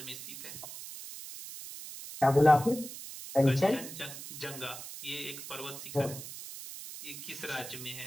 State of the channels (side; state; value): right; noise; hiss, 11 dB below the sound